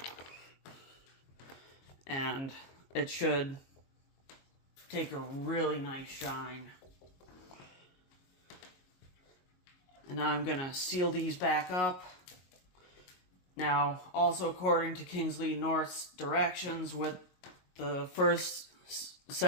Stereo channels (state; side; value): late; right; 22 ms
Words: And it should take a really nice shine. And now I'm going to seal these back up. Now, also according to Kingsley North's directions with the first